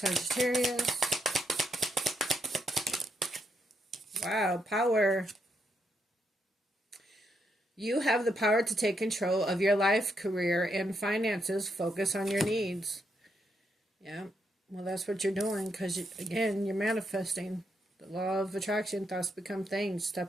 Wow, power. You have the power to take control of your life, career, and finances. Focus on your needs. Yeah, well, that's what you're doing because, again, you're manifesting. The law of attraction, thoughts become things.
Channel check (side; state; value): both; normal; correlation 0.78